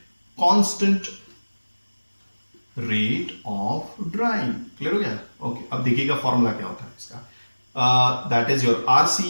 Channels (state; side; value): inverted; both; correlation -1.00